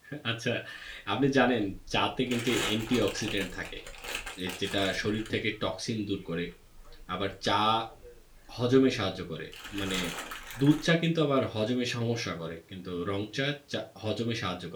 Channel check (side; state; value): both; identical; correlation 1.00